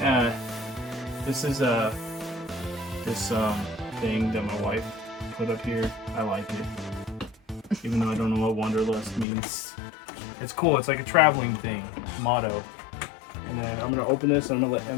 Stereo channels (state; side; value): drops out; right; at 9.2 s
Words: This is this thing that my wife put up here. I like it, even though I don't know what Wanderlust means. It's cool. It's like a traveling thing, motto. And then I'm gonna open this. And I'm gonna let